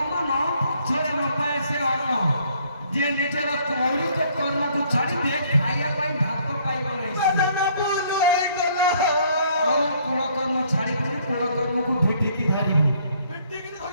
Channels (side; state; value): both; inverted; correlation -0.64